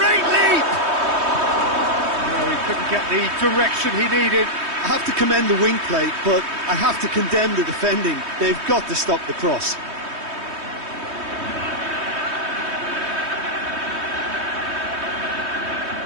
leap. No, he couldn't get the direction he needed. I have to commend the wing plate, but I have to condemn the defending. They've got to stop the cross.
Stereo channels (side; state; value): left; late; 3.2 ms